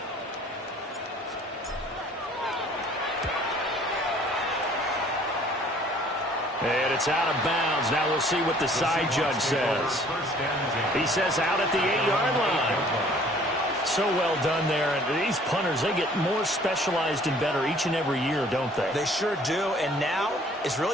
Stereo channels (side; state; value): both; normal; correlation 0.55